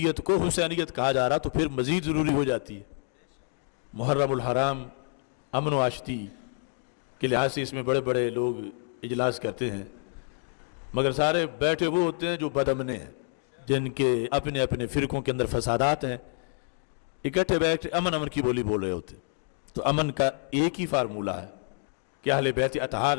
کو حسینیت کہا جا رہا تو پھر مزید ضروری ہو جاتی ہے۔ محرم الحرام امن و آشتی کے لحاظ سے اس میں بڑے بڑے لوگ اجلاس کرتے ہیں، مگر سارے بیٹھے وہ ہوتے ہیں جو بدامنے ہیں، جن کے اپنے اپنے فرقوں کے اندر فسادات ہیں، اکٹھے بیٹھے امن کی بولی بول رہے ہوتے۔ تو امن کا ایک ہی فارمولہ ہے کہ اہل بیت اطہار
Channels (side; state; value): right; silent; 58 dB below the other